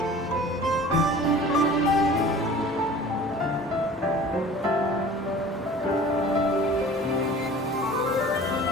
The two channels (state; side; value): normal; both; correlation 0.44